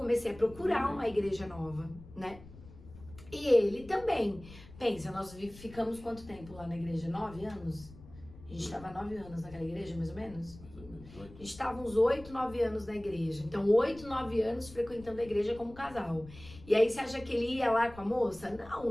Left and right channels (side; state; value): left; noise; rumble, 18 dB below the sound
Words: a procurar uma igreja nova, né? E ele também. Pensa, nós ficamos quanto tempo lá na igreja? 9 anos? A gente estava 9 anos naquela igreja, mais ou menos? Mais ou menos 8. A gente estava uns 8, 9 anos na igreja. Então, 8, 9 anos frequentando a igreja como casal. E aí, você acha que ele ia lá com a moça? Não,